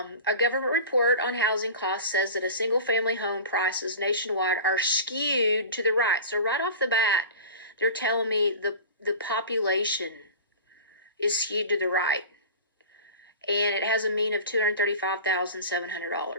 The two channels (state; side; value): inverted; both; correlation -0.35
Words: government report on housing costs says that a single family home prices nationwide are skewed to the right. So right off the bat, they're telling me the population is skewed to the right. And it has a mean of